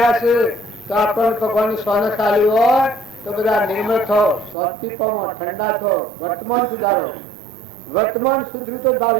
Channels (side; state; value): left; drops out; at 4.5 s